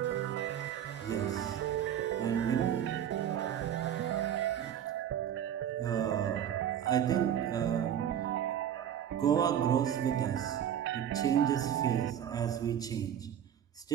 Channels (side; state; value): left; quieter; 9.8 dB